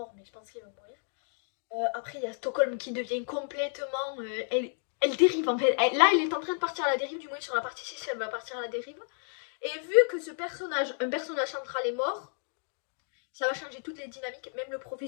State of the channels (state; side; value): silent; right; 57 dB below the other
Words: mais je pense qu'il va mourir. Après, il y a Stockholm qui devient complètement. Elle dérive en fait. Là, elle est en train de partir à la dérive, du moins sur la partie 6, elle va partir à la dérive. Et vu que un personnage central est mort, ça va changer toutes les dynamiques. Même le